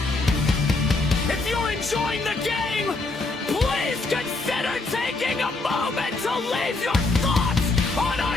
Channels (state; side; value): quieter; right; 3.4 dB